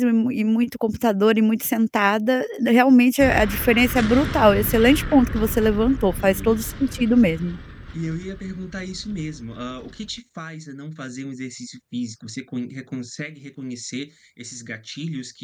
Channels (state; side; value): identical; both; correlation 1.00